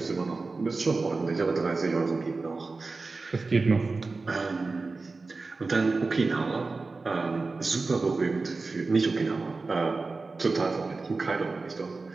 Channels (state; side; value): quieter; left; 3.8 dB